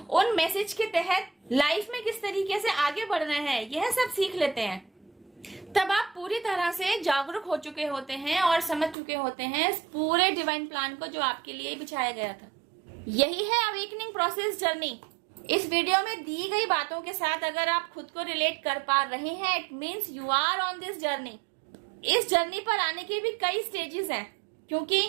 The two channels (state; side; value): drops out; left; at 9.0 s